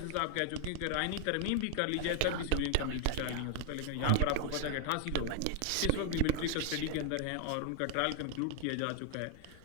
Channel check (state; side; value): different; both; correlation 0.00